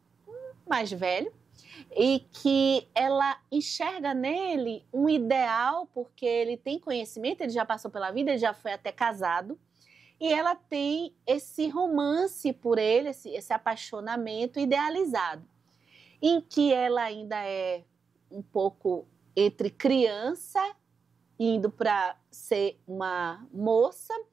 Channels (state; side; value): quieter; left; 5.6 dB